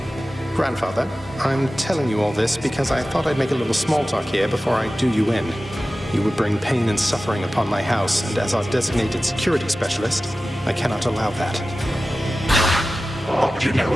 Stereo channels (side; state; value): both; normal; correlation 0.95